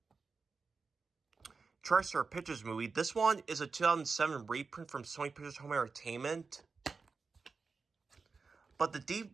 TriStar Pictures movie. This one is a 2007 reprint from Sony Pictures Home Entertainment. But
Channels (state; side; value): quieter; left; 4.7 dB